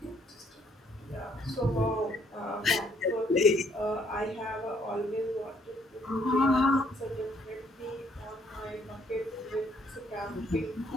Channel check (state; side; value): normal; both; correlation 0.66